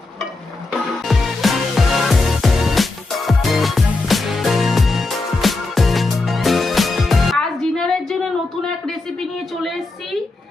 আজ ডিনারের জন্য নতুন এক রেসিপি নিয়ে চলে এসেছি।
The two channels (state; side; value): quieter; right; 3.3 dB